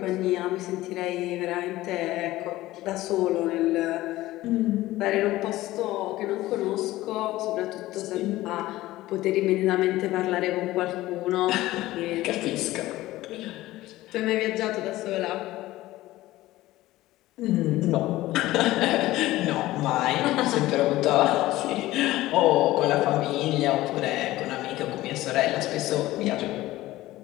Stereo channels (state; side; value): quieter; right; 16.8 dB